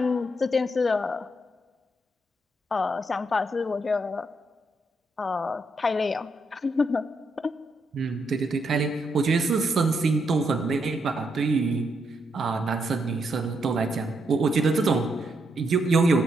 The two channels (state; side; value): normal; both; correlation 0.79